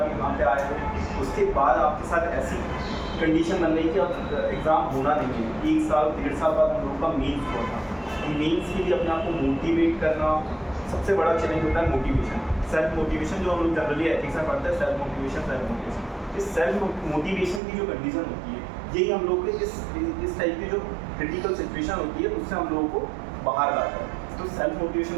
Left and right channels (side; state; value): left; drops out; at 17.6 s